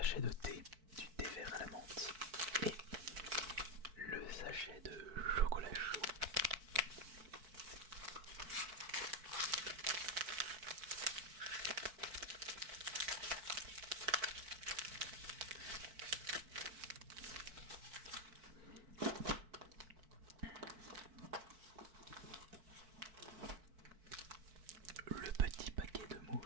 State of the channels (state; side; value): late; left; 4.6 ms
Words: sachet de thé, du thé vert à la menthe et le sachet de chocolat chaud. Le petit paquet de